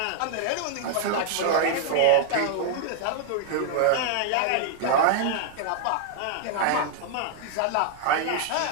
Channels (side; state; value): both; different; correlation 0.00